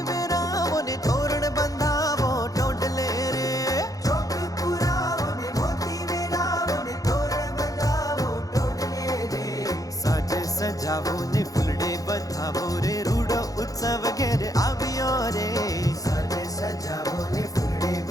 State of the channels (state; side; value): late; right; 0.17 ms